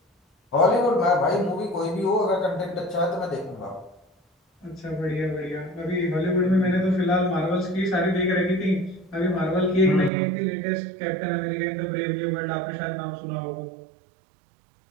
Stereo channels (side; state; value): left; drops out; at 10.1 s